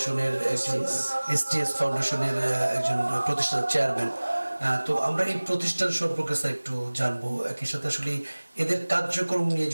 একজন, এসটিএস ফাউন্ডেশনের একজন প্রতিষ্ঠানের চেয়ারম্যান। তো আমরা এই প্রতিষ্ঠান সম্পর্কে স্যার একটু জানবো, একই সাথে আসলে এদের কার্যক্রম নিয়ে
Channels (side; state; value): both; inverted; correlation -1.00